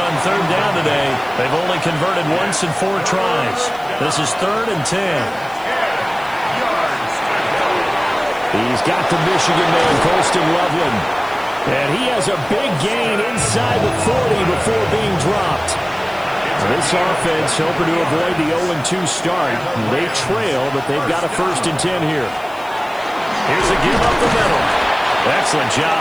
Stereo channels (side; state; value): left; noise; hiss, 25 dB below the sound